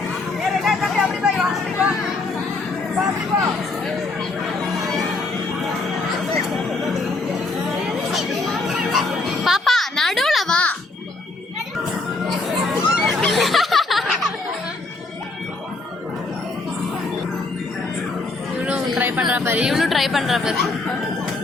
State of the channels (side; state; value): right; quieter; 3.3 dB